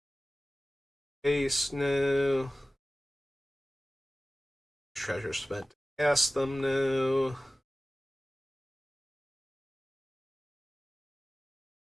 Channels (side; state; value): both; normal; correlation 0.97